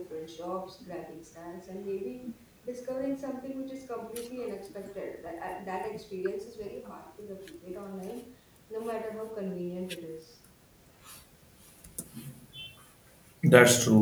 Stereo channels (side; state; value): both; identical; correlation 1.00